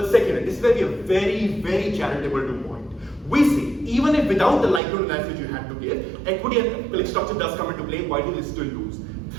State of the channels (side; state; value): left; drops out; at 4.8 s